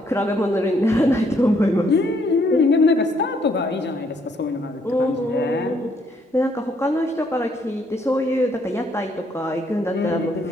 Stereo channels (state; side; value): normal; both; correlation 0.69